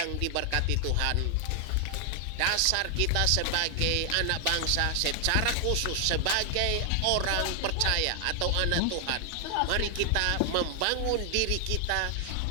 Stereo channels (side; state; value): both; different; correlation 0.00